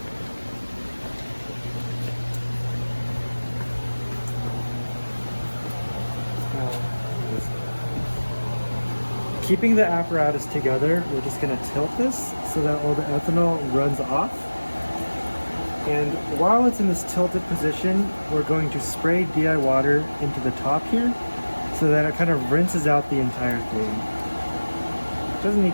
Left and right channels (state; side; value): inverted; both; correlation -1.00